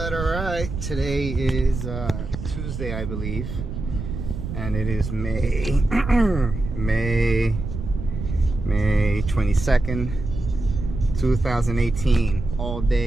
Today is Tuesday, I believe, and it is May 22nd, 2018. All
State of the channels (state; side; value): noise; right; rumble, 6 dB below the sound